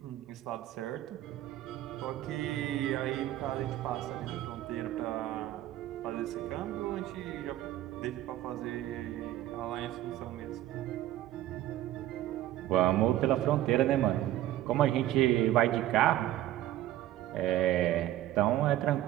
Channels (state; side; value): quieter; left; 13.8 dB